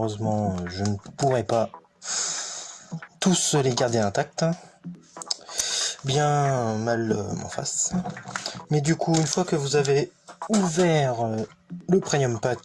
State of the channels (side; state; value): both; identical; correlation 1.00